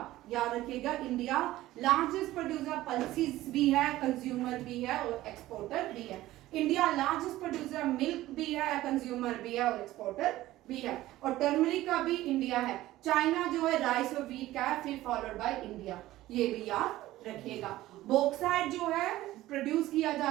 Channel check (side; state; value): left; quieter; 15.9 dB